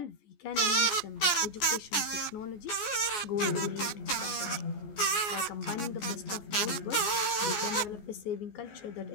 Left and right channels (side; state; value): right; late; 14 ms